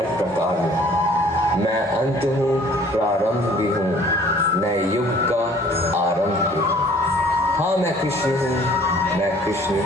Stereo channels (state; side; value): normal; both; correlation 0.54